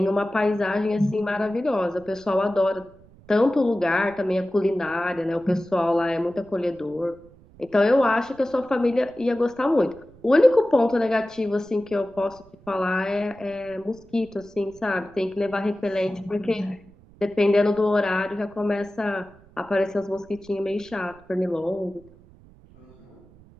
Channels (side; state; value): right; noise; rumble, 25 dB below the sound